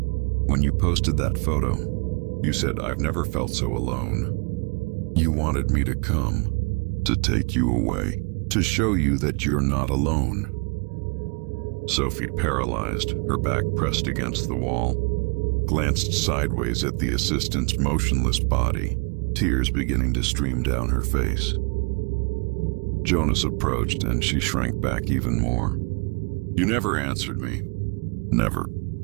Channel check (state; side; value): quieter; left; 32.7 dB